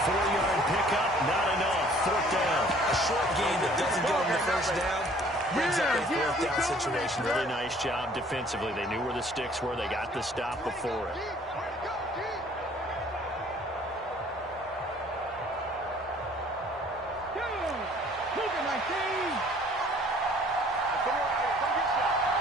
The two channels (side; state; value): both; normal; correlation 0.56